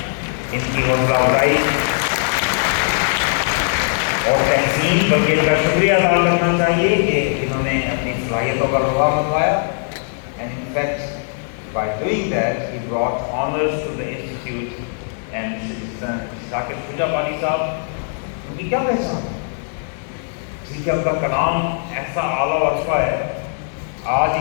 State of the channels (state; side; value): silent; right; 66 dB below the other